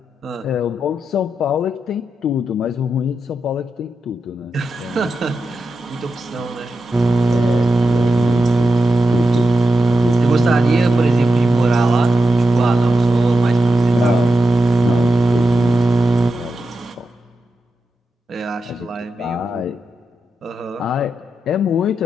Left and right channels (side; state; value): both; normal; correlation 0.89